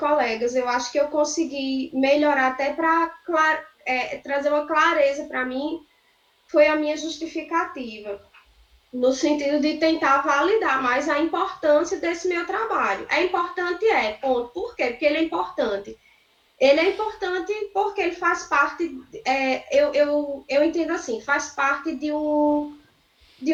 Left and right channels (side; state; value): both; identical; correlation 1.00